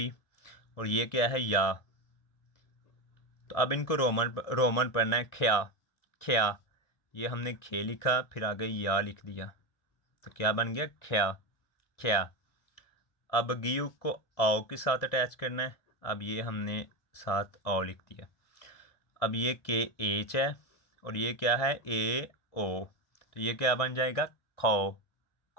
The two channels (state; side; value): late; right; 2.1 ms